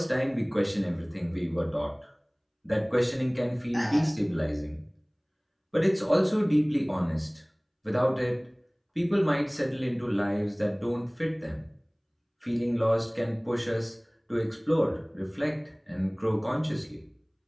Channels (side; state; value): both; identical; correlation 1.00